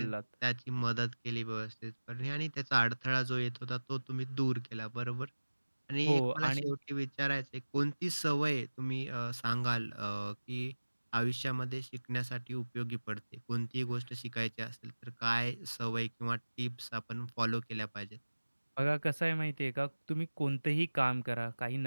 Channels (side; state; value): both; inverted; correlation -1.00